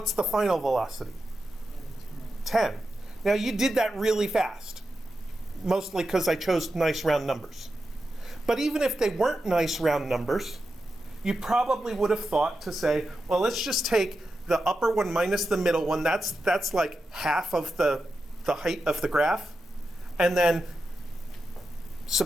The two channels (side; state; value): both; normal; correlation 0.89